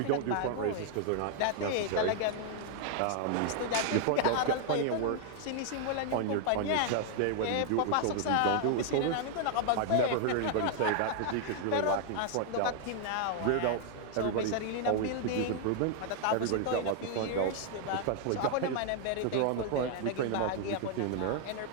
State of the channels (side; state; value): both; different; correlation 0.00